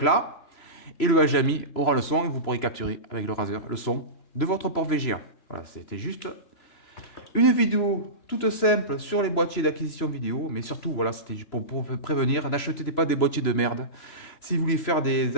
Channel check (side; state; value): right; late; 3.0 ms